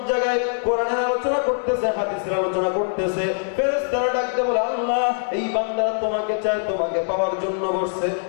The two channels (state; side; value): silent; right; digital silence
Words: জায়গায়? কোরআনের আলোচনা করতেছে, হাদিসের আলোচনা করতেছে। ফেরেশতারা ডাক দেয়া বলে, আল্লাহ এই বান্দারা তোমাকে চায়, তোমাকে পাওয়ার জন্য বসছে।